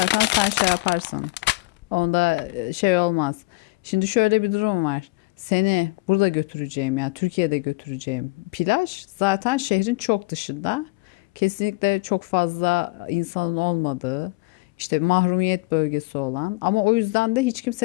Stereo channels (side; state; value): right; quieter; 22.9 dB